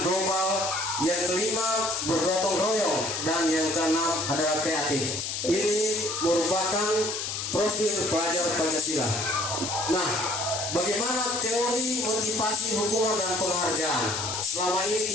global. Yang kelima, bergotong royong. Dan yang keenam adalah kreatif. Ini merupakan profil pelajar Pancasila. Nah, bagaimana teori motivasi hukuman dan penghargaan? Selama ini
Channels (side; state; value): left; noise; hiss, 3 dB below the sound